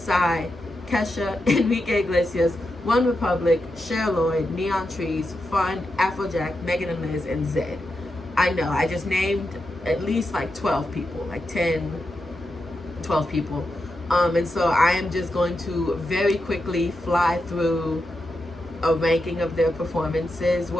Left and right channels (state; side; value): normal; both; correlation 0.87